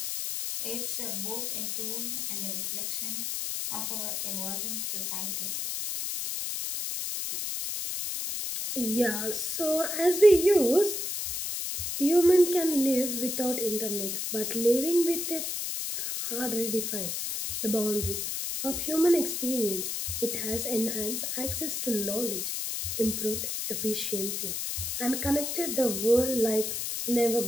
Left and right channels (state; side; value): noise; left; hiss, 2 dB below the sound